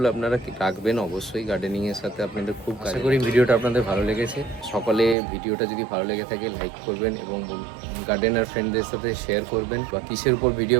আপনারা রাখবেন অবশ্যই। গার্ডেনিংয়ের সাথে আপনাদের খুব আশা করি ভিডিওটা আপনাদের ভালো লেগেছে। সকলে ভিডিওটা যদি ভালো লেগে থাকে লাইক করবেন এবং গার্ডেনার ফ্রেন্ডদের সাথে শেয়ার করবেন। বা কিসের উপর ভিডিও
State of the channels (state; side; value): drops out; left; at 5.2 s